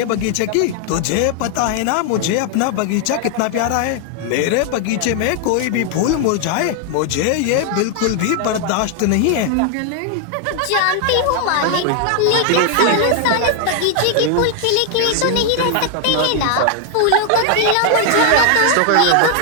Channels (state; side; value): different; both; correlation 0.00